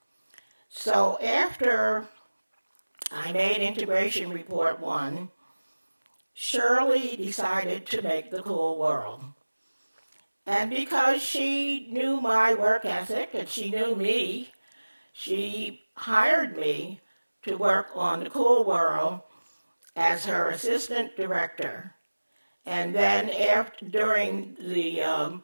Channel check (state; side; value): inverted; both; correlation -1.00